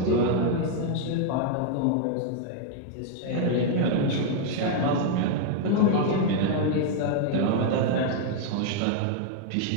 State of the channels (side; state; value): both; different; correlation 0.00